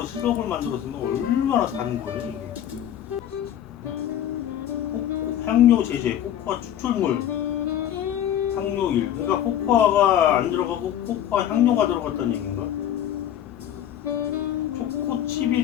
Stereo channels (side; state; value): right; quieter; 10.8 dB